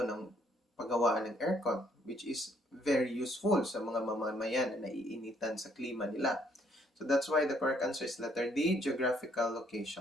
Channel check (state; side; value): normal; both; correlation 0.68